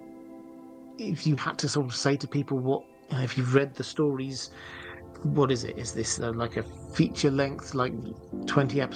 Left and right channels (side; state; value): both; identical; correlation 1.00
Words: if you had to sort of say to people if you've read the stories, what is it? Is this like a feature length, like 20